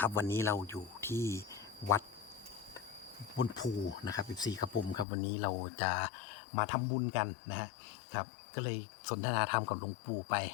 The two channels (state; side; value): drops out; right; at 5.1 s